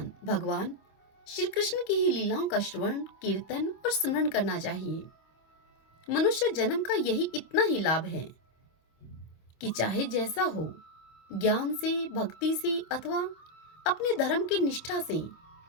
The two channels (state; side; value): late; right; 25 ms